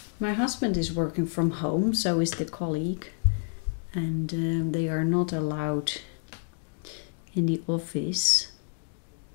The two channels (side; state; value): right; silent; digital silence